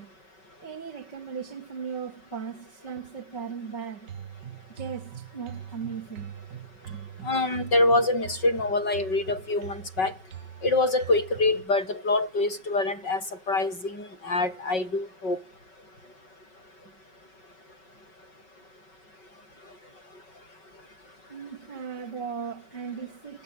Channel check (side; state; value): right; late; 5.3 ms